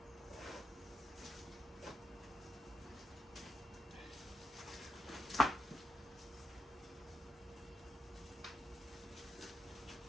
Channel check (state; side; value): normal; both; correlation 0.84